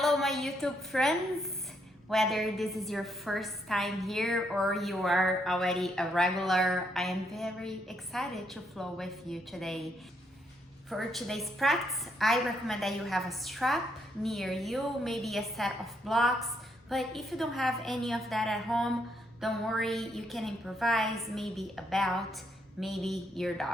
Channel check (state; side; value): normal; both; correlation 0.75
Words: my YouTube friends. Whether this is your first time here or you are already a regular, I am very excited to flow with you today. For today's practice, I recommend that you have a strap near you, maybe a set of blocks, but if you don't have any of that at home, don't worry, you can improvise, maybe a belt, maybe your